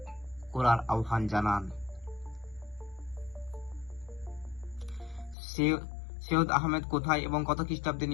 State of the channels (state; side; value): drops out; right; at 5.4 s